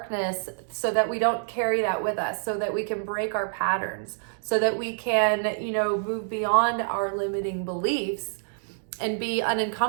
so that we don't carry that with us, so that we can break our patterns, so that we can, move beyond our limiting beliefs and be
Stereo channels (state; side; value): silent; left; digital silence